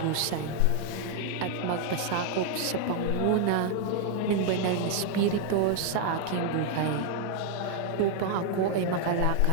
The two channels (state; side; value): different; both; correlation 0.00